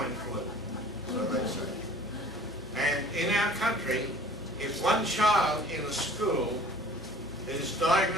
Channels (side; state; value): both; normal; correlation 0.49